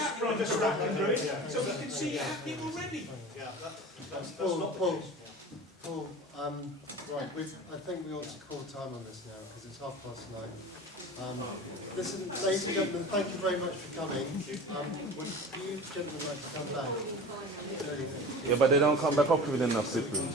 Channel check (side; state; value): both; normal; correlation 0.36